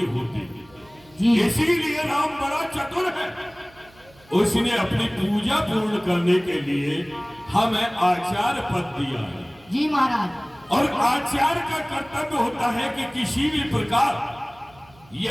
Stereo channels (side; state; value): right; noise; hum, 27 dB below the sound